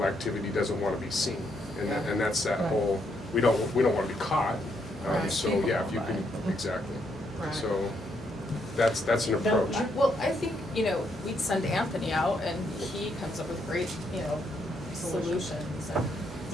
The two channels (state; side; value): normal; both; correlation 0.75